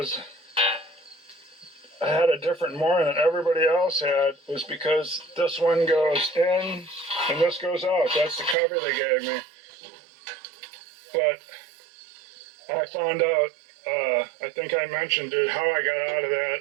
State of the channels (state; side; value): drops out; left; at 8.6 s